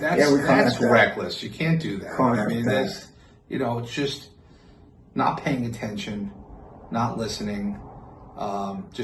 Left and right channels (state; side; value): identical; both; correlation 1.00